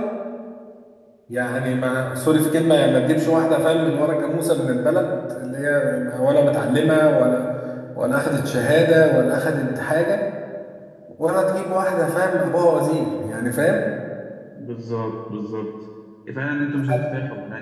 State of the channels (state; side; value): identical; both; correlation 1.00